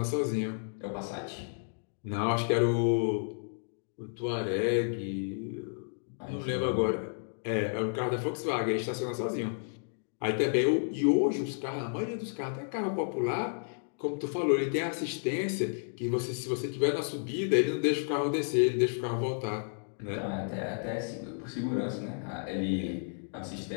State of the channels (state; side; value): silent; right; digital silence